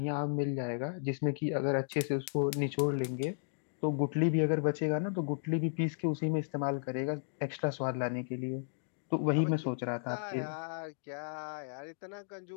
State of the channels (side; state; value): right; silent; digital silence